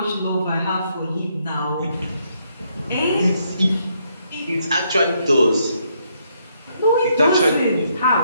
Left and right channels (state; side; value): inverted; both; correlation -0.74